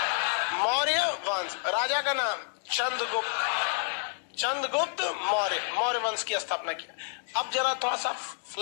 मौर्य वंश। राजा का नाम चंद्रगुप्त। चंद्रगुप्त मौर्य, मौर्य वंश की स्थापना किया। अब जरा थोड़ा सा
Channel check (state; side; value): silent; right; digital silence